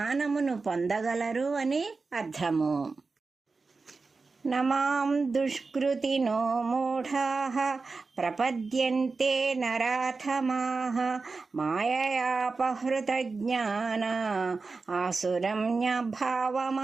పొందగలరు అని అర్థము. నమాం దుష్కృతినో మూఢాః ప్రపద్యంతే నరాధమాః మాయయాపహృతజ్ఞానా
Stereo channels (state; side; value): quieter; left; 4.1 dB